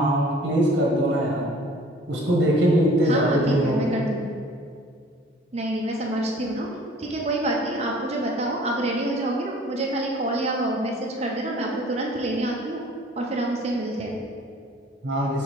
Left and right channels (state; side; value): normal; both; correlation 0.51